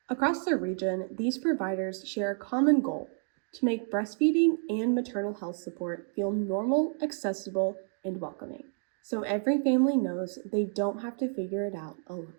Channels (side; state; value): left; silent; 58 dB below the other